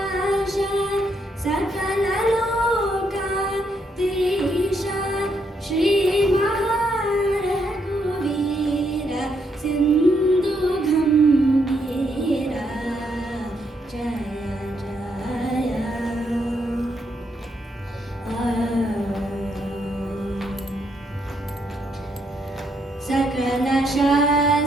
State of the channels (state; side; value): normal; both; correlation 0.76